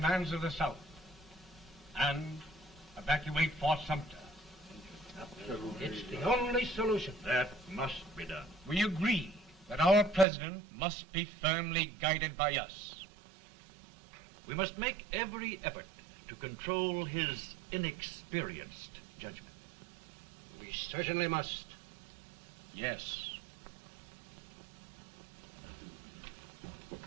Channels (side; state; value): left; drops out; at 10.2 s